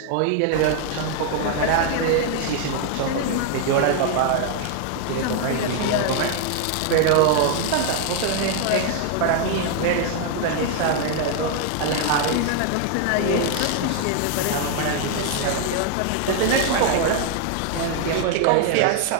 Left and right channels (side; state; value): both; different; correlation 0.00